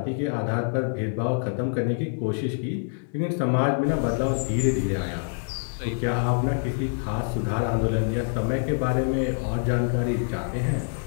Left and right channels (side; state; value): right; silent; digital silence